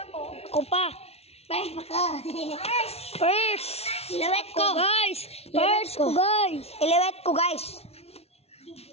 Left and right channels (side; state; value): right; late; 0.30 ms